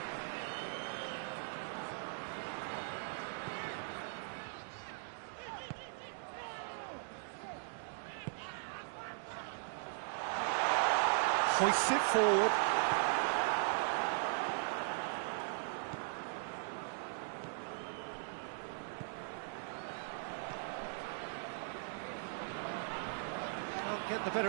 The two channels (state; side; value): silent; left; digital silence